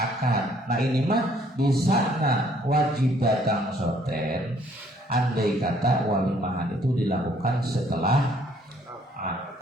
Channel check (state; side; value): normal; both; correlation 0.63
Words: Nah, ini mah bisa wajib datang soten. Andai kata walimahan itu dilakukan setelah